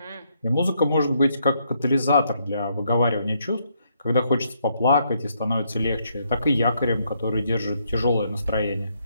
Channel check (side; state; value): both; inverted; correlation -0.74